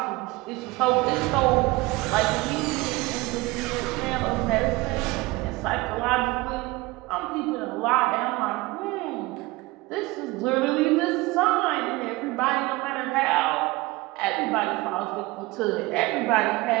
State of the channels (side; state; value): left; quieter; 21.6 dB